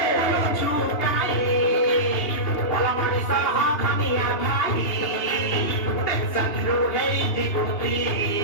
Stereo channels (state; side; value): late; right; 2.8 ms